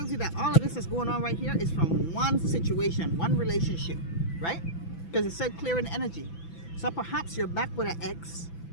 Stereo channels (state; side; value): late; right; 6.0 ms